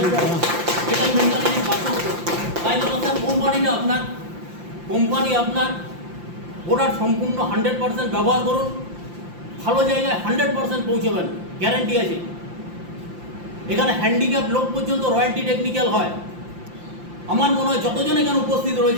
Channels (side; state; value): left; late; 5.8 ms